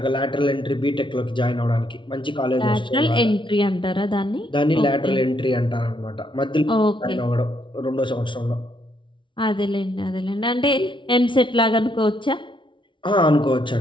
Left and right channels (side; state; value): right; late; 0.24 ms